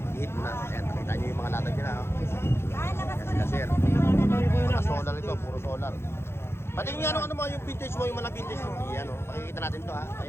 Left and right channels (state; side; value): late; right; 0.12 ms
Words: i-hit mo na. Ayan, nakita nyo yung mga latag nila ha. Ayan sila sir. Mga solar ito, puro solar. Pati yung ano mo, yung vintage mo, yung mga vintage mo. Ayan o, pakikita natin to ha.